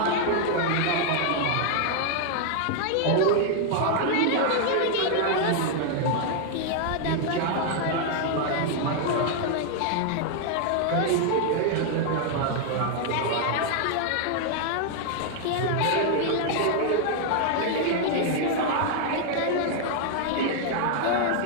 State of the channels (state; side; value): different; both; correlation 0.00